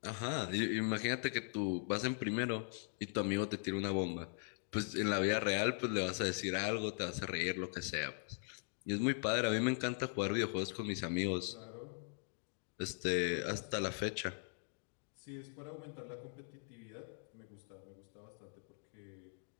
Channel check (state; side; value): silent; right; 51 dB below the other